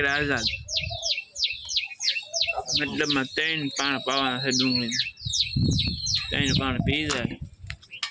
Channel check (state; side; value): identical; both; correlation 1.00